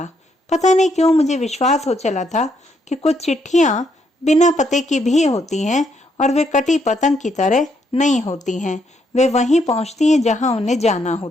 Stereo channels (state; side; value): normal; both; correlation 0.74